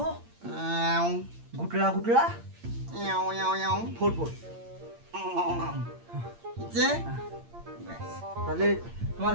গুটলা গুটলা 44। যে তাহলে তোমার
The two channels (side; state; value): left; late; 8.7 ms